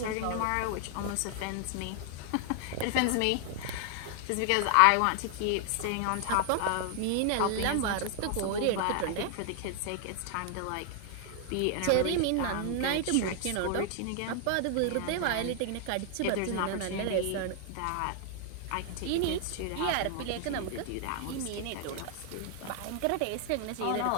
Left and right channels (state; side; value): different; both; correlation 0.00